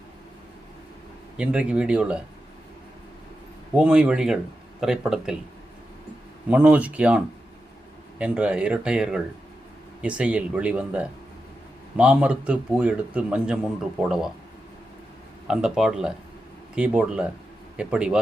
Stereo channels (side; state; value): both; normal; correlation 0.89